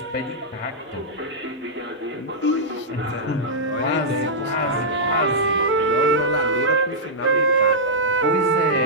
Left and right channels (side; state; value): both; normal; correlation -0.11